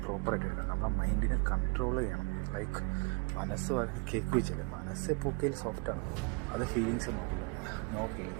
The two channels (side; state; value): left; quieter; 31.1 dB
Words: പ്രോപ്പറായിട്ട് എടുക്കണം. നമ്മളെ മൈൻഡിനെ കൺട്രോൾ ചെയ്യണം. ലൈക്ക് മനസ്സ് കേക്ക് വെച്ചില്ലേ, മനസ്സ് എപ്പോഴും സോഫ്റ്റാണ്. അത് ഫീലിങ്സ് നോക്കില്ല, നോ